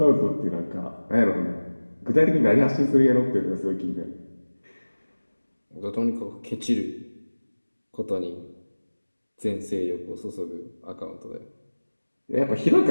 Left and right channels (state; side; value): inverted; both; correlation -1.00